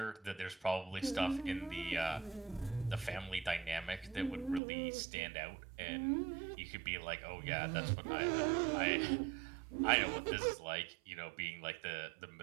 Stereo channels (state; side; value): drops out; left; at 4.6 s